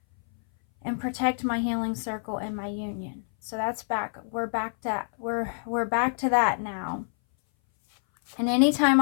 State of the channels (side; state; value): right; silent; 59 dB below the other